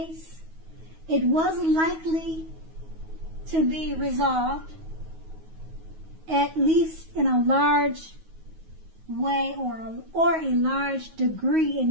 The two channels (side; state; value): left; late; 9.4 ms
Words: it was likely to be resolved, at least in a large way or a large degree in